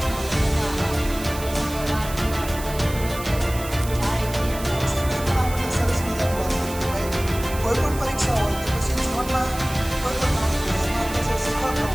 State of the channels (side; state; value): right; noise; hiss, 13 dB below the sound